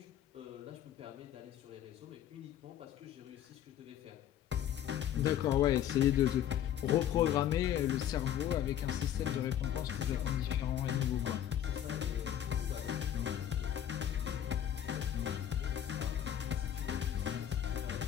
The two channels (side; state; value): right; quieter; 10.5 dB